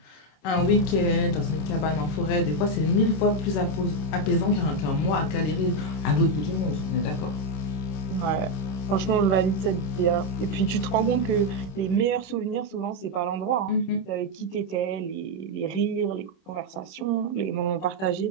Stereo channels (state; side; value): late; right; 26 ms